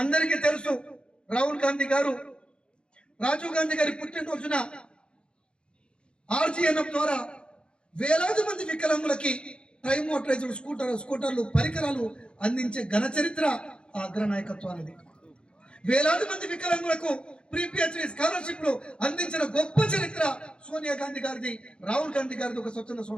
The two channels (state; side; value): late; right; 0.054 ms